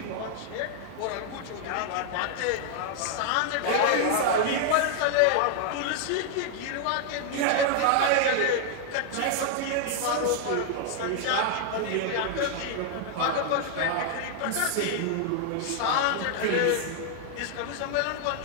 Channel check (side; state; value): both; different; correlation 0.00